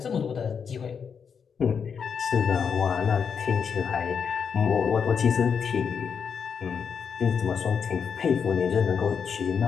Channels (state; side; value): quieter; right; 6.6 dB